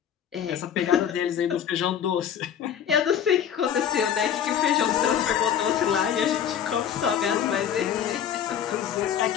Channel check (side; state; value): right; quieter; 9.0 dB